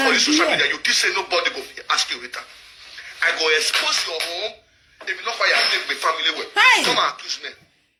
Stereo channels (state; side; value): identical; both; correlation 1.00